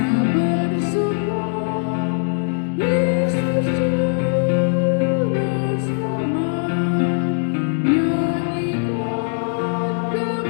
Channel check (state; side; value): silent; right; digital silence